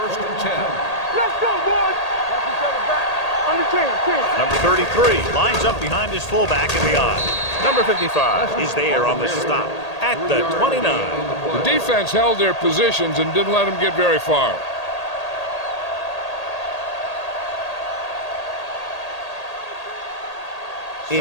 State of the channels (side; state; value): right; late; 1.8 ms